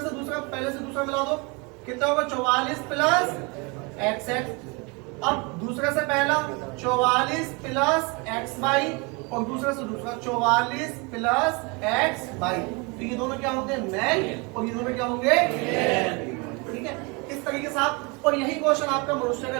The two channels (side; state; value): left; quieter; 29.4 dB